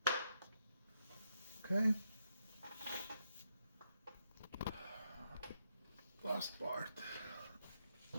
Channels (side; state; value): both; inverted; correlation -0.79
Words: Okay. Last part.